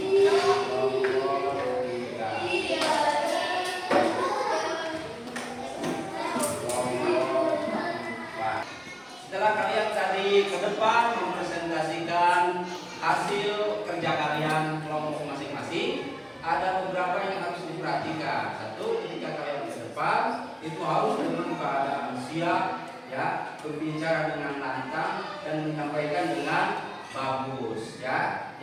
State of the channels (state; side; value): identical; both; correlation 1.00